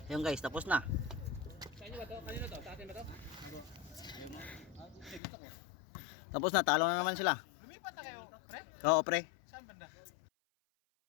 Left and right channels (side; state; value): right; drops out; at 5.2 s